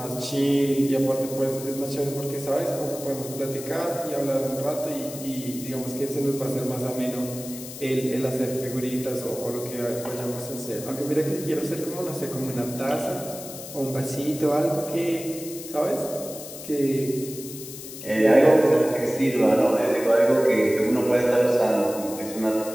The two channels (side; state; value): left; noise; hiss, 12 dB below the sound